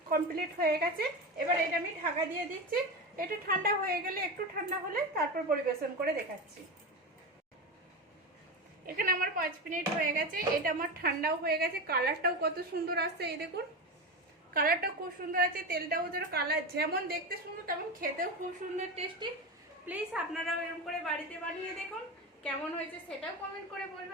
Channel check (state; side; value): normal; both; correlation 0.20